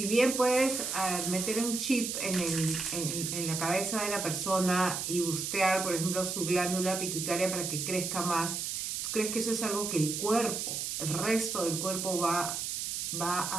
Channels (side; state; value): right; noise; hiss, 3 dB below the sound